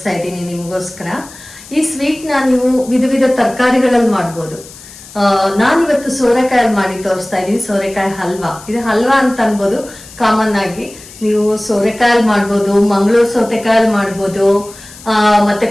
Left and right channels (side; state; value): left; noise; hiss, 19 dB below the sound